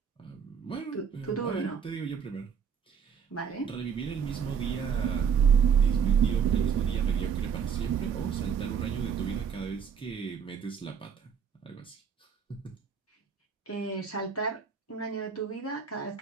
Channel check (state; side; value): quieter; left; 6.9 dB